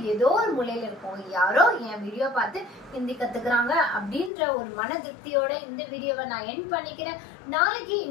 ஏதோ ஒரு மூலையில இருக்கும். யாரோ என் வீடியோ பார்த்து ஹிந்தி கத்துக்கிறாங்க அப்படின்ற ஒரு மன திருப்தியோட இந்த வீடியோவை நான் எண்ட் பண்ணிக்கிறேன். நாளைக்கு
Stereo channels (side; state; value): right; drops out; at 4.3 s